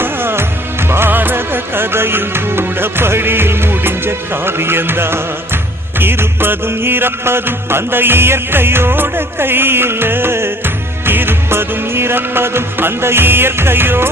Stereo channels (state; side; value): normal; both; correlation 0.54